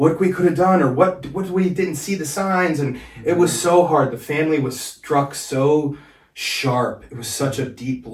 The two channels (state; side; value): identical; both; correlation 1.00